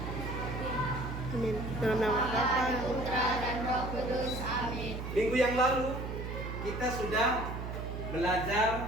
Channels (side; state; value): right; noise; hum, 6 dB below the sound